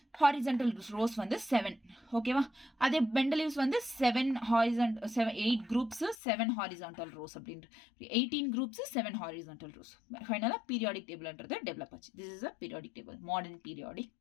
ஹாரிசன்டல் ரோஸ் வந்து 7. ஓகேவா? அதே மெண்டலீவ்ஸ் வந்து 8 குரூப்ஸ் 7 ஹாரிசான்டல் ரோஸ் அப்படின்ற 18 குரூப்ஸ் 7 ஹாரிசான்டல் ரோஸ். ஃபைனலாக பீரியாடிக் டேபிள்ன்றது டெவலப் ஆச்சு. This is a periodic table, modern periodic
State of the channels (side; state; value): right; drops out; at 6.2 s